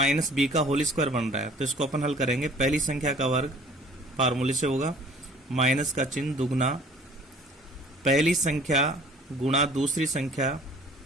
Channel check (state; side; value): normal; both; correlation 0.51